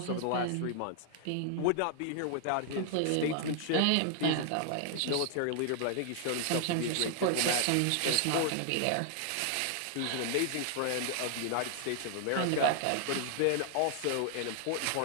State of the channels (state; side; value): different; both; correlation 0.00